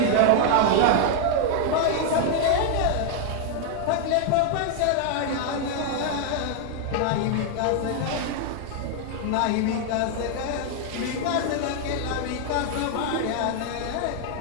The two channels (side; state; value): both; different; correlation 0.00